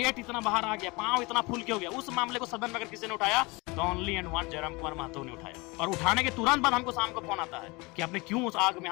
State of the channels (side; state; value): right; quieter; 25.5 dB